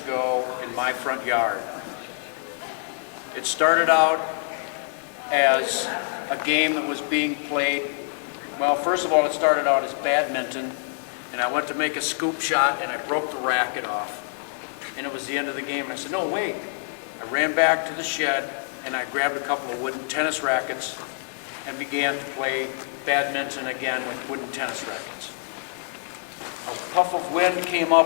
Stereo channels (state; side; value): silent; right; digital silence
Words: in my front yard. It started out as a game that was being played. Well, first of all, it started out as badminton, and I went to make a scoop shot and I broke the racket off. And it was the end of the game, and I said, no, wait. I ran back to the shed and I grabbed a couple of wooden tennis rackets and began to play badminton again with wooden tennis rackets. A puff of wind came